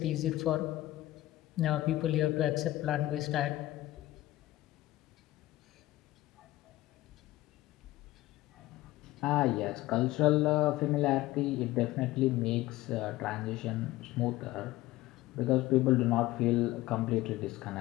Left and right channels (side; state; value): right; quieter; 16.8 dB